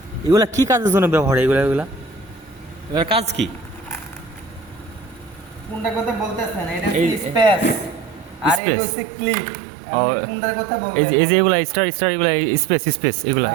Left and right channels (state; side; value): drops out; left; at 8.6 s